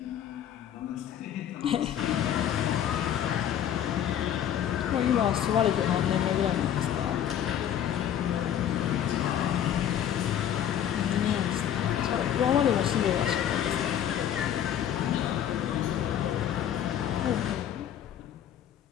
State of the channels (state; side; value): quieter; right; 10.0 dB